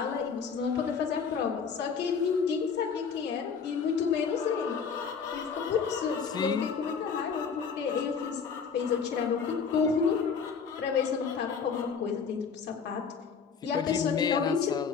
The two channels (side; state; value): right; quieter; 6.0 dB